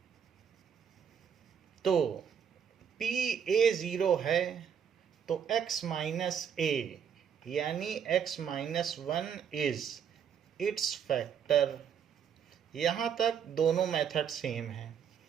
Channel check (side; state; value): left; quieter; 7.8 dB